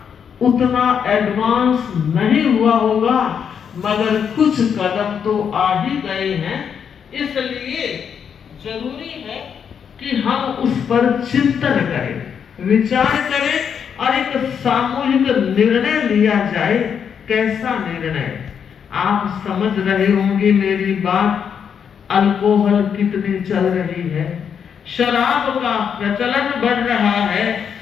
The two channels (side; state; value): right; quieter; 7.5 dB